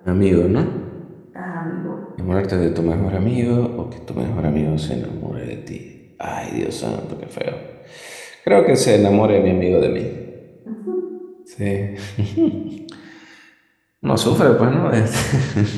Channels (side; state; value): both; identical; correlation 1.00